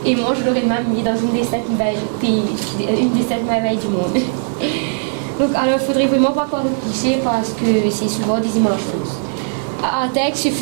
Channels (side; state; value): left; silent; digital silence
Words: Et moi je l'aurais même mis dans une des 7 merveilles du monde. Donc alors il ne faudrait vraiment pas croire le cliché, parce que c'est souvent des images fausses. À Artec, ce